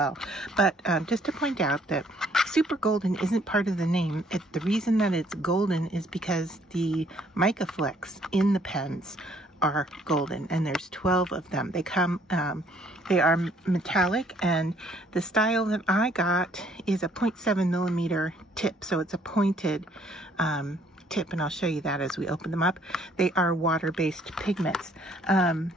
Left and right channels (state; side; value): normal; both; correlation 0.63